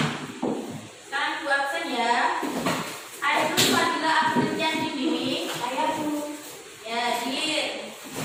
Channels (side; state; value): both; identical; correlation 1.00